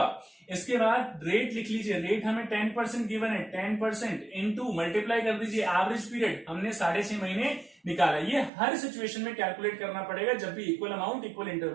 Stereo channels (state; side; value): drops out; left; at 8.5 s